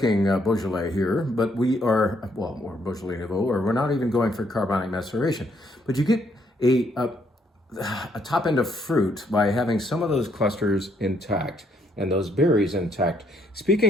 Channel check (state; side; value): normal; both; correlation 0.71